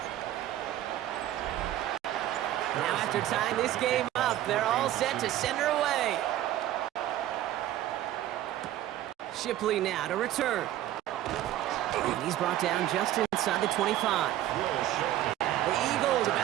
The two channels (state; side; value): quieter; left; 13.2 dB